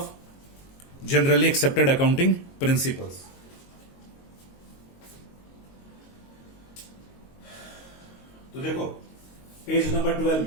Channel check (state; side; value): late; right; 22 ms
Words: generally accepted accounting principles. तो देखो पेज नंबर 12